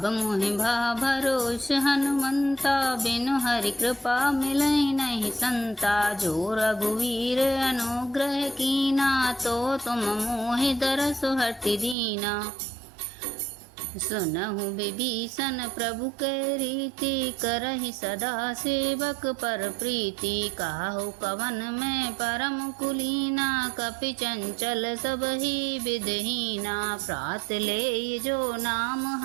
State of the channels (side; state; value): left; drops out; at 12.0 s